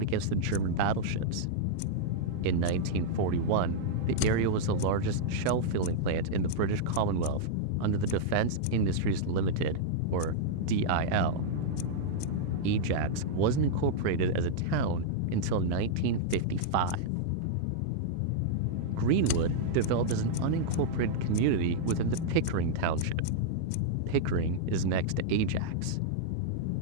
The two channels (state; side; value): different; both; correlation -0.02